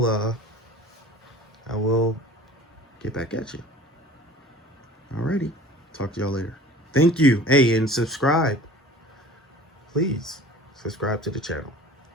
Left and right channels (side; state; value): both; normal; correlation 0.44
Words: get back at you. Alrighty, talk to y'all later. Thank you. Hey, and subscribe. Please subscribe to the channel.